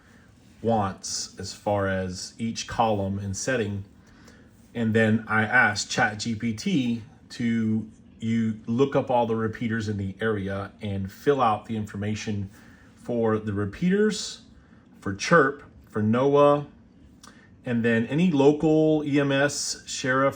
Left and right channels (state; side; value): identical; both; correlation 1.00